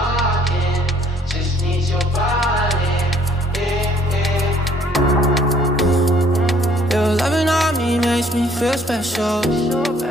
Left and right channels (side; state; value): both; normal; correlation 0.61